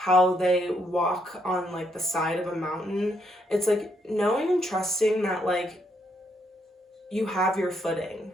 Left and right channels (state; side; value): normal; both; correlation 0.74